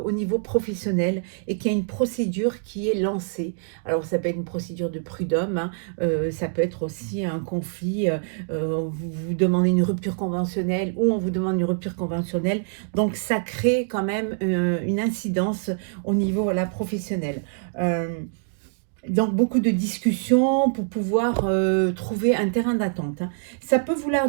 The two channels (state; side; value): silent; left; digital silence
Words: niveau professionnel, et qu'il y a une procédure qui est lancée. Alors, ça peut être une procédure de prud'homme, hein, ça peut être aussi un conflit, vous demandez une rupture conventionnelle, ou on vous demande une rupture conventionnelle. Donc, ça crée quand même une incidence au niveau là, professionnel. Donc, beaucoup de discussions pour pouvoir trouver un terrain d'attente, hein. Ça peut